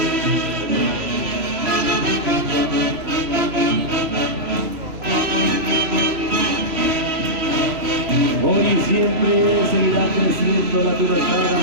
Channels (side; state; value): left; late; 3.0 ms